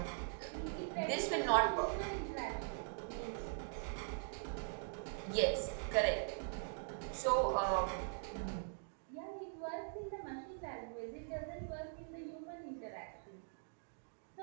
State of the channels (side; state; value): left; silent; digital silence